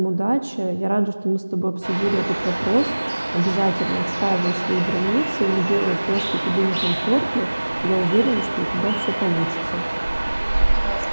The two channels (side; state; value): both; inverted; correlation -1.00